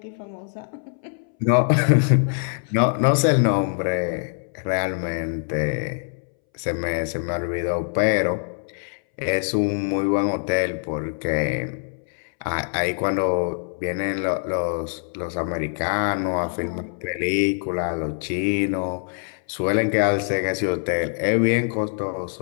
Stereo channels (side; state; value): right; silent; 63 dB below the other